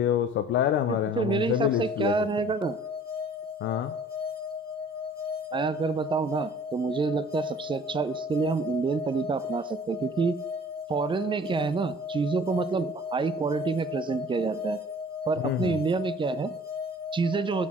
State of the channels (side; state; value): both; normal; correlation 0.51